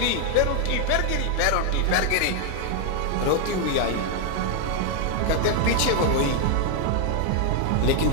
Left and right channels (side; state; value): both; different; correlation 0.00